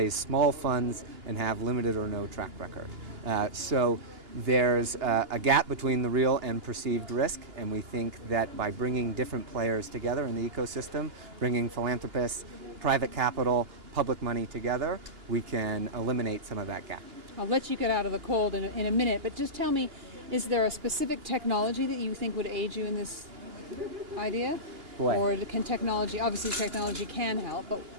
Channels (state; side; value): late; left; 2.8 ms